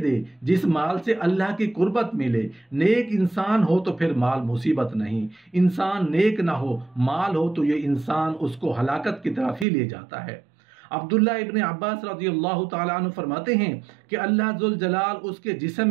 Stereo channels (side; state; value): left; drops out; at 9.7 s